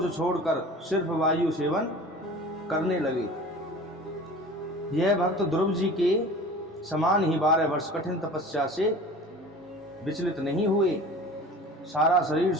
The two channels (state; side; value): normal; both; correlation 0.40